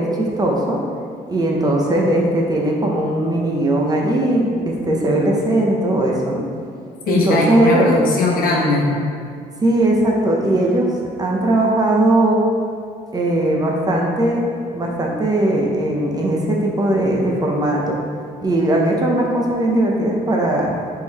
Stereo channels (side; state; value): both; normal; correlation 0.63